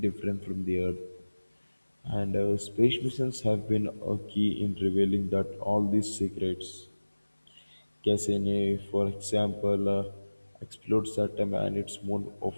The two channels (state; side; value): inverted; both; correlation -1.00